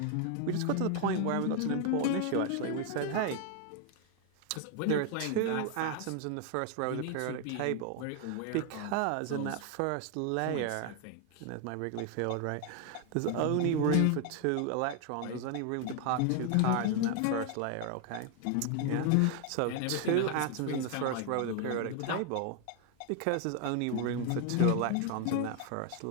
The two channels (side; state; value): both; different; correlation 0.01